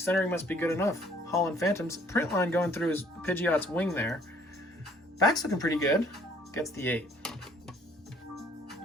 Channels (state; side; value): normal; both; correlation 0.60